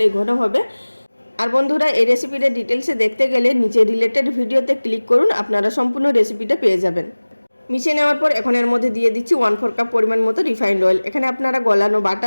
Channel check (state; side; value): inverted; both; correlation -1.00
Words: ঘন হবে। আর বন্ধুরা এই রেসিপিটা ডিটেলসে দেখতে গেলে নিচে রিলেটেড ভিডিওতে ক্লিক করুন, আপনারা সম্পূর্ণ রেসিপিটা পেয়ে যাবেন। মিশিয়ে নেওয়ার পর এখন এর মধ্যে দিয়ে দিচ্ছি 1/4 কাপ পরিমাণ মতো রিফাইন্ড অয়েল। এখানে আপনারা গলানো